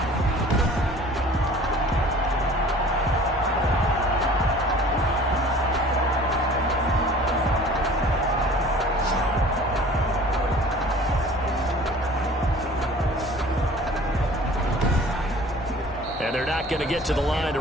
They're not going to get to the line to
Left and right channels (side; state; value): both; normal; correlation 0.47